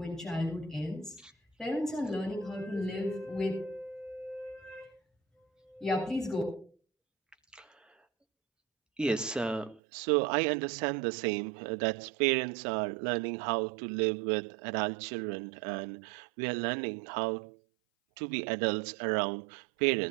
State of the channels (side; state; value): left; drops out; at 9.8 s